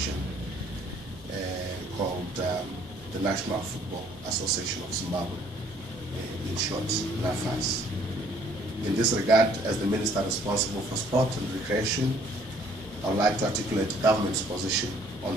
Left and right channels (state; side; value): normal; both; correlation 0.61